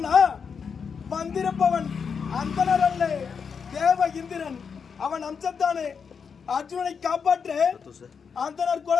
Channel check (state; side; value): quieter; right; 6.2 dB